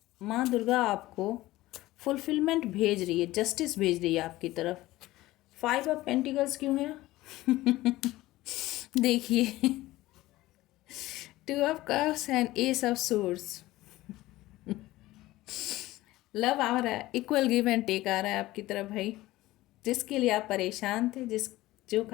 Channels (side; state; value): right; quieter; 17.4 dB